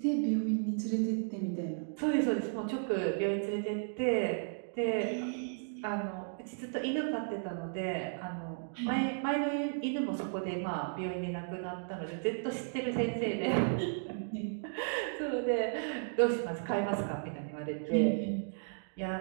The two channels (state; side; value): silent; left; digital silence